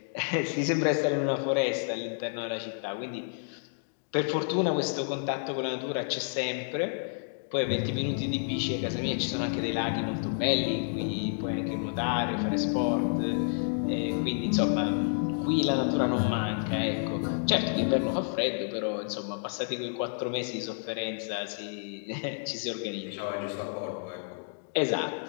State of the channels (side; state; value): right; silent; digital silence